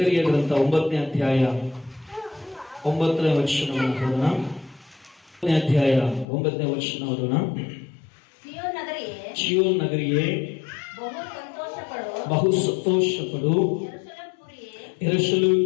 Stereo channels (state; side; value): drops out; right; at 6.2 s